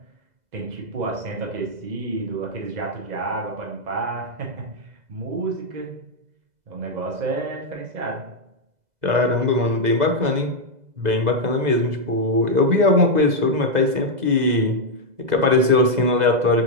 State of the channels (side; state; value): left; late; 2.0 ms